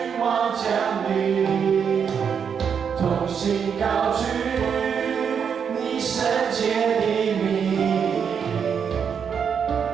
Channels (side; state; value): left; quieter; 7.1 dB